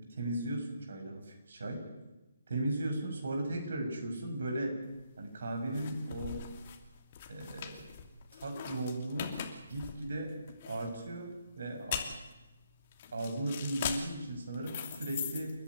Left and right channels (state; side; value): inverted; both; correlation -0.73